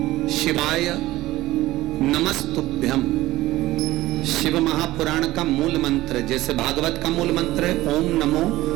शिवाय नमस्तुभ्यम, शिव महापुराण का मूल मंत्र, जैसे भागवत का मूल मंत्र है ओम नमो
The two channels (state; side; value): quieter; left; 16.9 dB